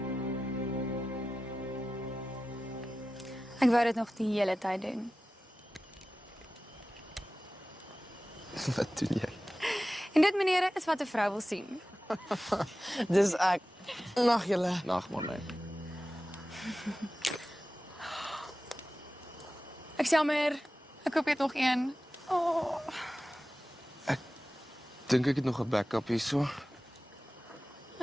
Ek wou dit nog die hele tyd doen. Wat doen jy? En dit, meneere, is wat 'n vrou wil sien. Dis ek. Nag julle. Nag maar nee. Ek is jammer. Ek koop net nog een. Oh. Dink ek het nog 'n backup hierso.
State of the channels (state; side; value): normal; both; correlation 0.95